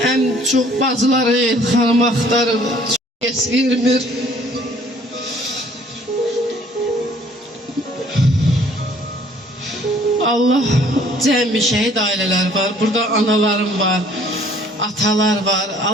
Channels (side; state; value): both; normal; correlation 0.57